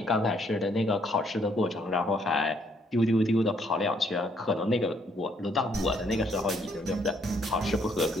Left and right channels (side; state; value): both; normal; correlation 0.69